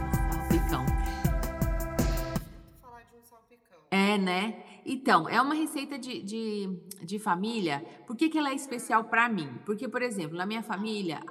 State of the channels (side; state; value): both; identical; correlation 1.00